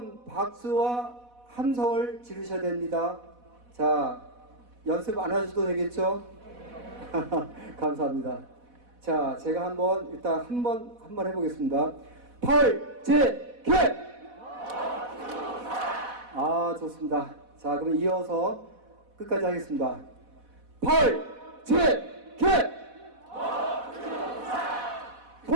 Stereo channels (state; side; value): late; left; 4.1 ms